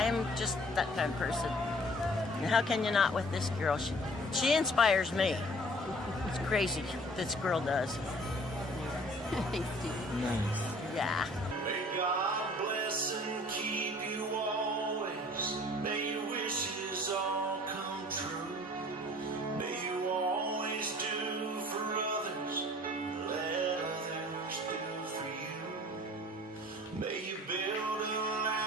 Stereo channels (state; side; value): normal; both; correlation 0.51